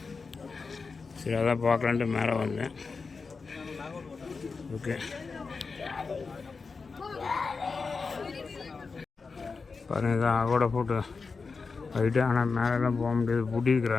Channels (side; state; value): right; quieter; 4.6 dB